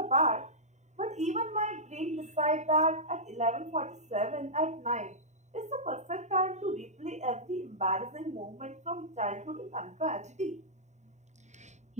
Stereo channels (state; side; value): late; left; 0.34 ms